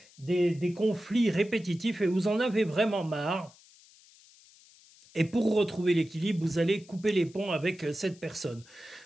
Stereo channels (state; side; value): noise; left; hiss, 26 dB below the sound